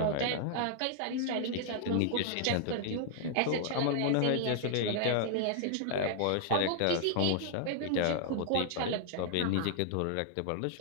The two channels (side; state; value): both; different; correlation -0.01